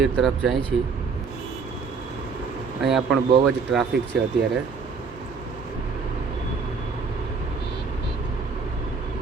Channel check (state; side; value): quieter; left; 5.1 dB